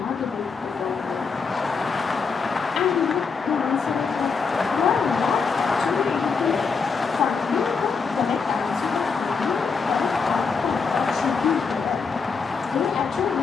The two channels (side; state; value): right; quieter; 5.2 dB